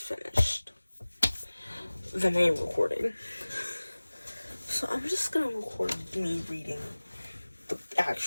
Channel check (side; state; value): both; inverted; correlation -1.00